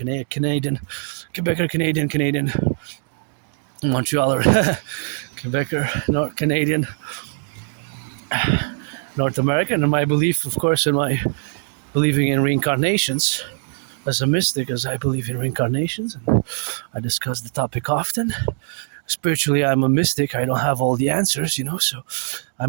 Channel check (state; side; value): silent; left; digital silence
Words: a Canadian, Quebecer, Canadian, Montrealer, Quebecer, North Canadian, North American. And my belief, of course, in my believing in reincarnations, as a mystic, as I believe in reincarnations, and I discuss the topic often. Spiritually, I'm a mystic. I don't have all the answers, so